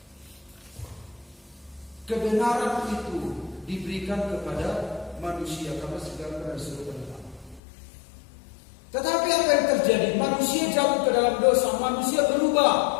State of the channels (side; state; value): right; drops out; at 7.6 s